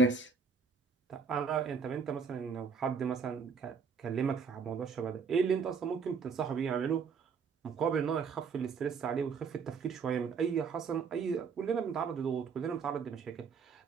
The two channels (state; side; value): quieter; left; 5.7 dB